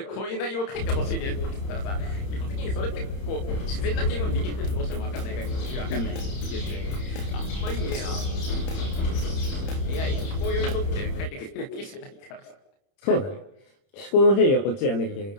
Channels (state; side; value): late; right; 31 ms